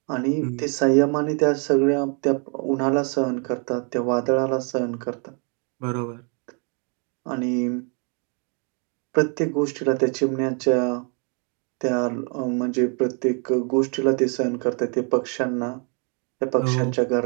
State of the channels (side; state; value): left; quieter; 38.1 dB